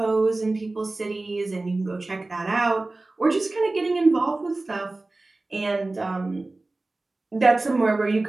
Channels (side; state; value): left; quieter; 3.1 dB